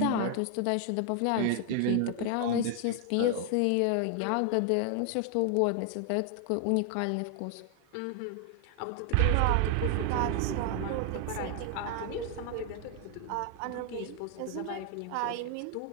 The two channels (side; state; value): both; different; correlation 0.00